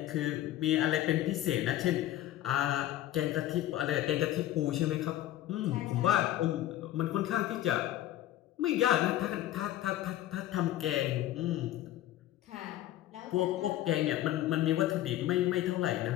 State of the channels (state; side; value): quieter; right; 13.7 dB